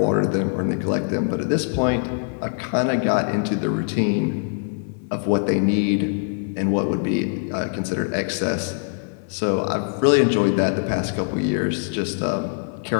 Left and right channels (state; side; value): silent; right; digital silence